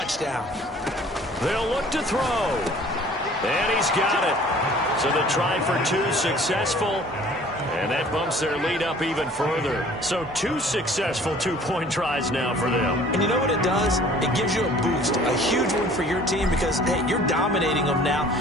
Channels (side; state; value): both; normal; correlation 0.51